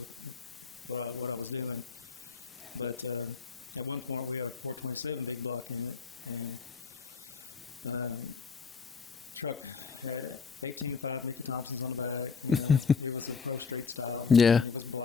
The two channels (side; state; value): right; quieter; 5.4 dB